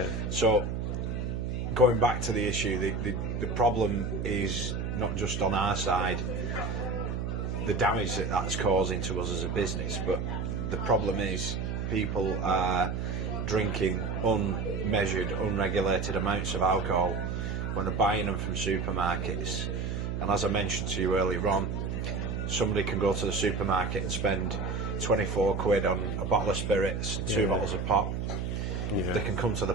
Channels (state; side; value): noise; right; hum, 2 dB below the sound